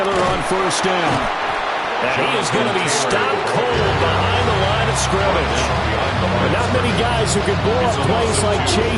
on 1st down. And he is going to be stopped cold behind the line of scrimmage. But not many guys who can blow up plays like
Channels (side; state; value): both; identical; correlation 1.00